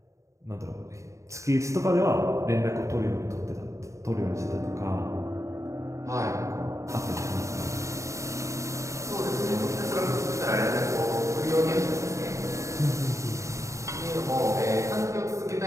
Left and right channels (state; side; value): late; left; 0.15 ms